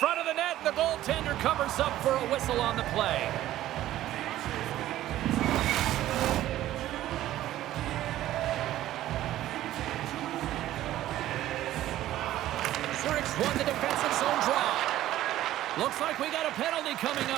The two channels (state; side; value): quieter; left; 13.9 dB